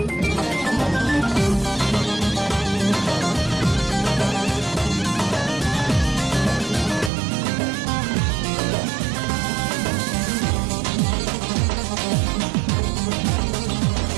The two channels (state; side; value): drops out; left; at 7.1 s